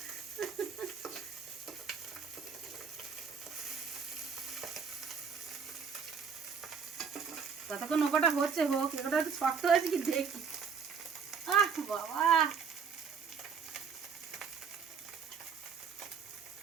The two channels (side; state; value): left; quieter; 6.3 dB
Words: কতক্ষণ ওটা হচ্ছে হোক, ওটা একটু শক্ত হয়েছে কি দেখি। আহ বাবা,